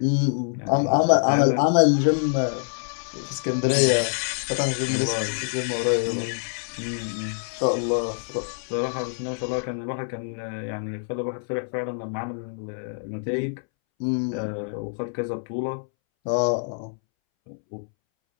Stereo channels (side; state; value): right; silent; 61 dB below the other